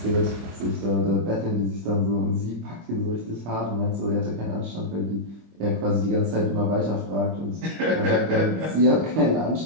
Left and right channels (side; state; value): left; late; 25 ms